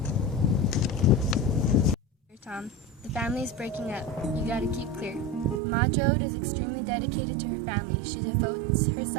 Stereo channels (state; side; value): drops out; left; at 5.6 s